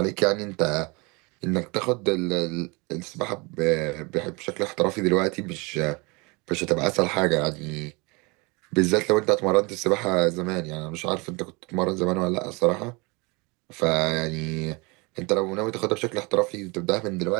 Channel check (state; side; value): quieter; left; 27.6 dB